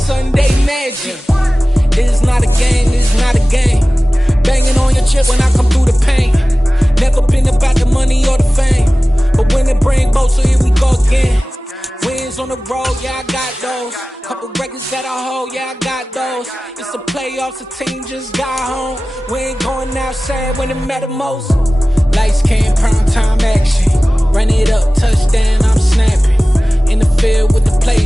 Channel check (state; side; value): normal; both; correlation 0.97